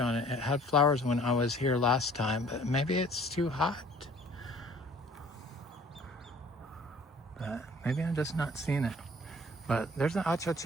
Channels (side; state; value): both; normal; correlation 0.53